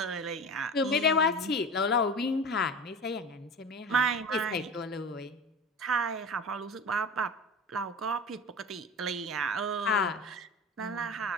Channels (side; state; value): both; normal; correlation 0.32